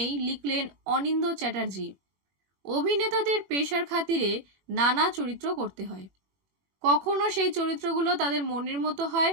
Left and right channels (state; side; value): late; left; 21 ms